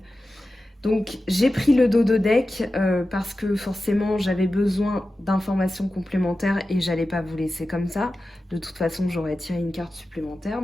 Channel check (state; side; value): normal; both; correlation 0.94